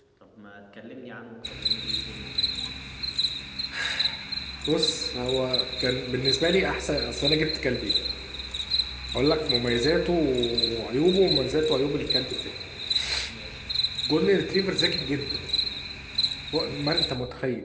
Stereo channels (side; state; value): both; identical; correlation 1.00